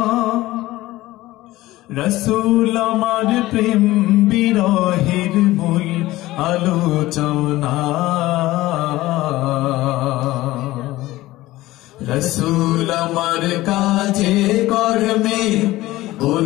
রসুল আমার প্রেম বিরহের মূল আলোচনা, রসুল আমার কাজে কর্মে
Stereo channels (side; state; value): right; quieter; 17.4 dB